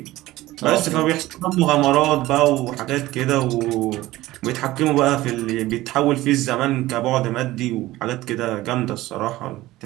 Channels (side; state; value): left; quieter; 17.1 dB